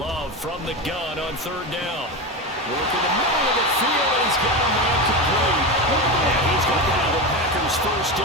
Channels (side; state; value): both; normal; correlation 0.19